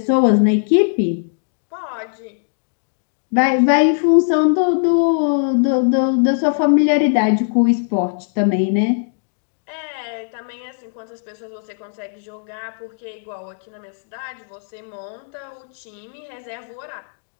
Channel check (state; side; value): silent; right; digital silence